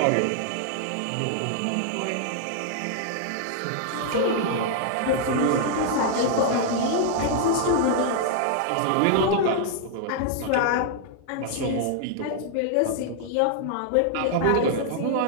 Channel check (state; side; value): different; both; correlation -0.01